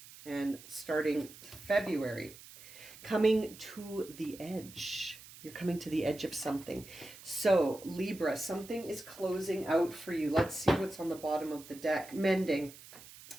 and starting February? Coming to the edge. You're coming to the edge of something. So, Libra, something is closing out for you. Let's see what's on the bottom of the deck. Mending.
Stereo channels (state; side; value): noise; right; hiss, 18 dB below the sound